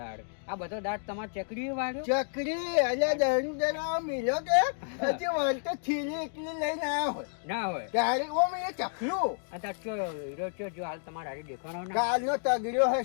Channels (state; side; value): silent; right; digital silence